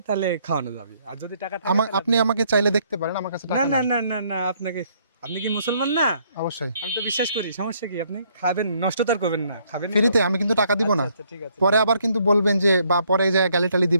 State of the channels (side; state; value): both; inverted; correlation -0.68